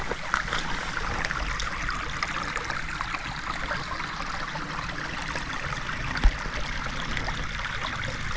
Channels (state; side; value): identical; both; correlation 1.00